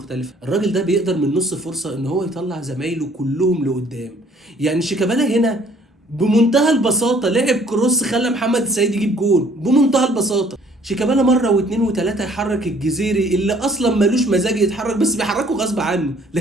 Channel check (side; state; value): both; normal; correlation 0.59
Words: الراجل ده بيقدر من نص فرصه ان هو يطلع زمايله كلهم لقدام. يعني شيكابالا هنا بمنتهى البساطه لعب كروس خلى محمد السيد يجيب جول بمنتهى البساطه. شيكابالا مره واثنين وثلاثه يحرك الجزيري اللي اصلا ملوش مزاج يتحرك، بس بيحركه غصب عنه